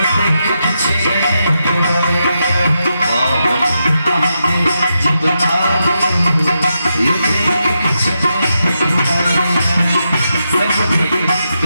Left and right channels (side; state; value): both; inverted; correlation -0.85